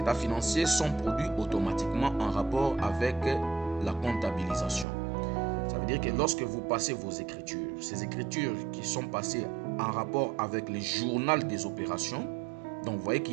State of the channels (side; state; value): left; drops out; at 4.9 s